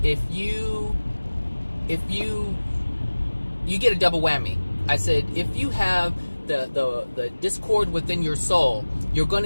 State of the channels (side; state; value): both; inverted; correlation -1.00